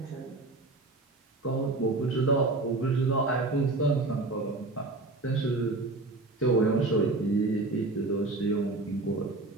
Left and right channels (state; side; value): quieter; left; 3.2 dB